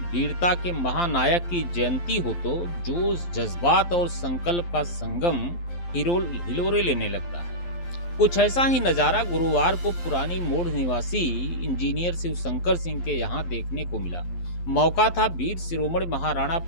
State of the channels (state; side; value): late; right; 12 ms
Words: वीरता के महानायक की जयंती हो तो जोश, जज्बात और संकल्प का संगम हिलोरे लेने लगता है। कुछ ऐसा ही नज़ारा गुरुवार को पुरानी मोड़ निवासी इंजीनियर शिवशंकर सिंह के यहाँ देखने को मिला। मौका था वीर शिरोमणि महाराणा